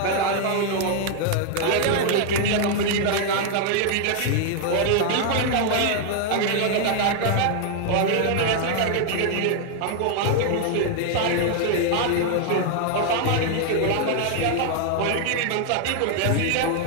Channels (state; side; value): different; both; correlation 0.00